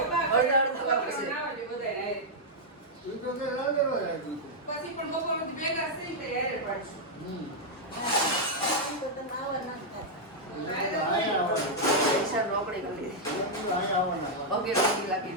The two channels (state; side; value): normal; both; correlation -0.05